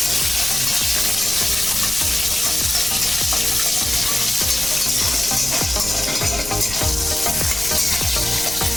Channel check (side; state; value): left; noise; rumble, 14 dB below the sound